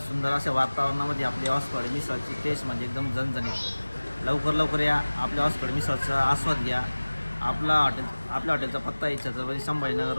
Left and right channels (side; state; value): both; inverted; correlation -1.00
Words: अशा वातावरणामध्ये आपली हॉस्पिटल मिसळची टेस्ट म्हणजे एकदम झणझणीत. लवकर या आपल्या हॉस्पिटल मिसळचा आस्वाद घ्या. आपल्या हॉटेलचा पत्ता आहे छत्रपती संभाजीनगर